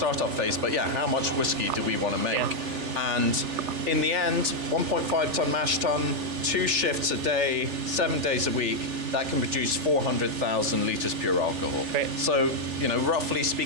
phase, but how much whiskey do we want to make? And in the end, 1.5 ton mash tun, 2 shifts a day, 7 days a week, that can produce 400,000 litres pure alcohol. Right. So, roughly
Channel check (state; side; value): late; left; 3.4 ms